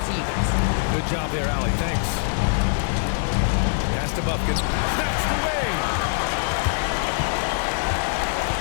to you guys. Good job there, Allie. Thanks. Pass to Bufkin. That's the way.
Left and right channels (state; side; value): silent; right; digital silence